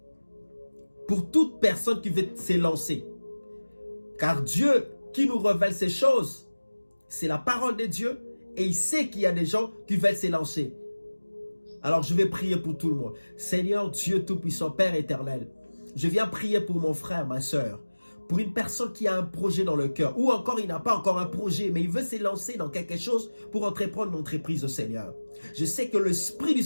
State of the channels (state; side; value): inverted; both; correlation -1.00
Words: pour toute personne qui veut s'élancer. Car Dieu qui nous révèle ces choses, c'est la parole de Dieu et il sait qu'il y a des gens qui veulent s'élancer. Alors je vais prier pour tout le monde. Seigneur Dieu Tout-Puissant, Père éternel, je viens prier pour mon frère, ma soeur, pour une personne qui a un projet dans le cœur, ou encore il n'a pas encore un projet, mais il veut s'élancer dans quelque chose pour entreprendre une entreprise au Seigneur. Je sais que l'Esprit du